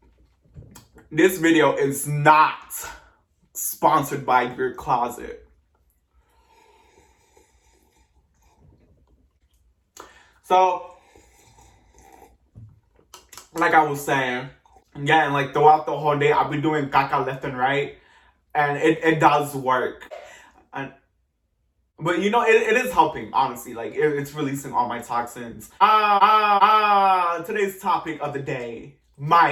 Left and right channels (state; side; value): identical; both; correlation 1.00